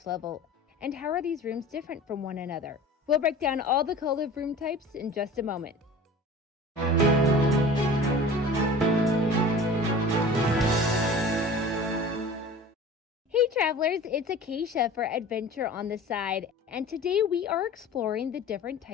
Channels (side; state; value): both; normal; correlation 0.39